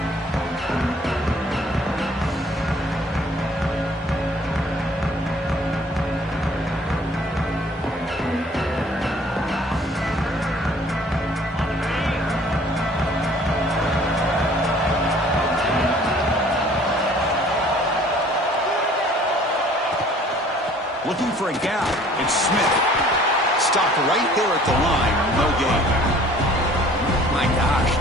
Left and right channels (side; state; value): both; normal; correlation 0.54